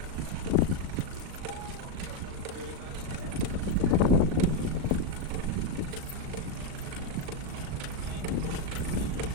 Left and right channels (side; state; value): left; late; 38 ms